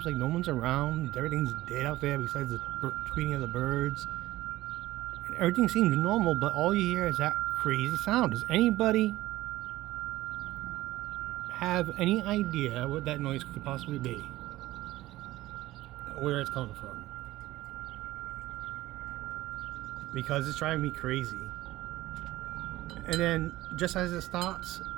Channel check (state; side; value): quieter; left; 16.7 dB